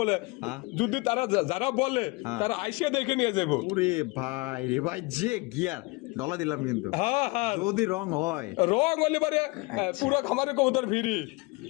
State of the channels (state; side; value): quieter; right; 25.1 dB